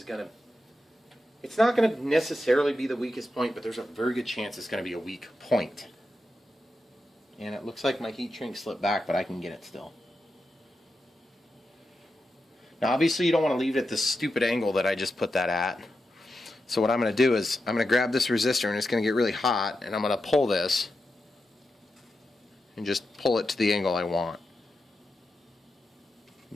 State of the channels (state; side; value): normal; both; correlation 0.88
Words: going to, it's not going to necessarily be the weakest point, but there's a very good chance it's going to be a weak point. And it looks like my heat shrink slipped back, but I can get it still. Now obviously you don't want to leave it at this stupid angle that I just put that at. So what I'm going to do is I'm going to grab this resistor, and it's going to get really hot, and I'm going to pull this and just pull it to the angle I want.